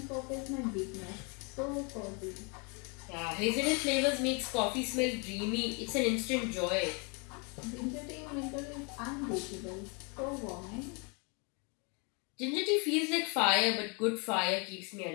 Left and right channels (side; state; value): right; quieter; 33.3 dB